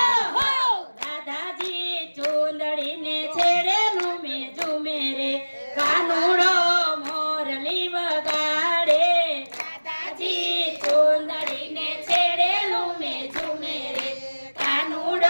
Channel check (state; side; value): inverted; both; correlation -1.00